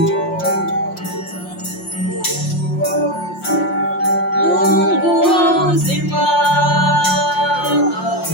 Mungu wa uzima,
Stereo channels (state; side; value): late; right; 5.6 ms